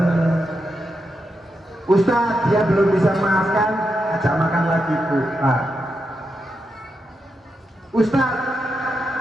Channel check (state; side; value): normal; both; correlation 0.86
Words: Ustadz, dia belum bisa maafkan, ajak makan lagi Bu. Pak. Ustadz,